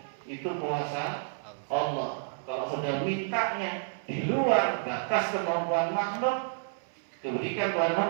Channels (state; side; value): silent; left; 58 dB below the other